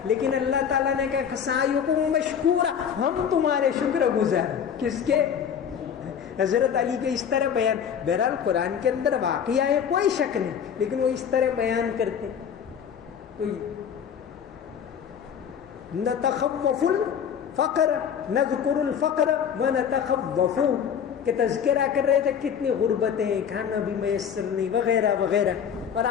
لیکن اللہ تعالیٰ نے کہا سعیکم مشکورا, ہم تمہارے شکر گزار. کس کے؟ حضرت علی کے. اس طرح بیان. بہرحال قرآن کے اندر واقعہ ہے, کوئی شک نہیں, لیکن وہ اس طرح بیان کرتے. نتخوف الفقر نذکر الفقر ونتخوف, کہ تذکرہ کر رہے تھے کتنی غربتیں, کھانا بھی میسر نہیں وغیرہ وغیرہ. اور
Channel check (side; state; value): right; quieter; 7.9 dB